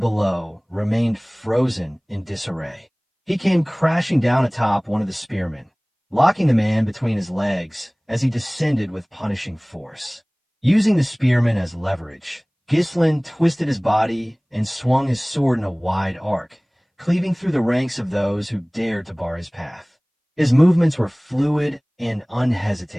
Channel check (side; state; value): both; identical; correlation 1.00